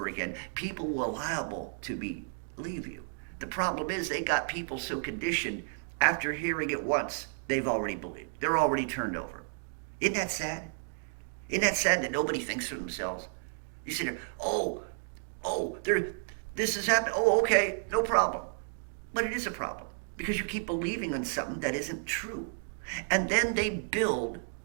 again, people will liable to believe you. The problem is they got people so conditioned, after hearing it once, they've already believed. They're already turned over. Isn't that sad? Isn't that sad that nobody thinks for themselves? You sit there, there, this has happened. Oh, okay, no problem. But it is a problem because you keep believing in something that isn't true. And then they build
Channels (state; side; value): silent; left; digital silence